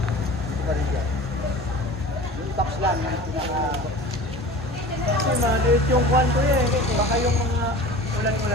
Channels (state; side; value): normal; both; correlation 0.38